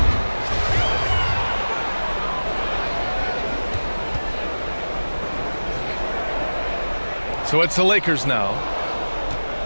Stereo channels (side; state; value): both; inverted; correlation -1.00